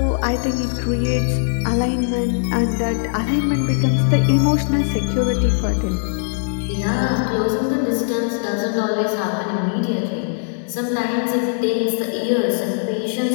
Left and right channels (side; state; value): right; silent; digital silence